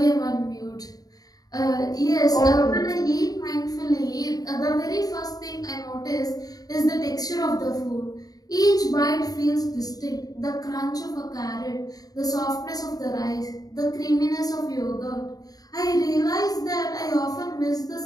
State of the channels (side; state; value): right; late; 0.18 ms